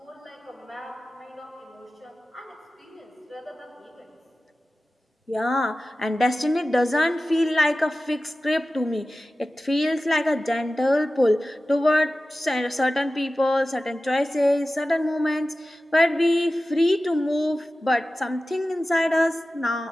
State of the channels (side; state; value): both; normal; correlation 0.95